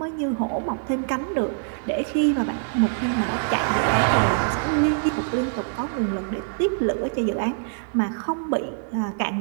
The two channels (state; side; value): silent; left; digital silence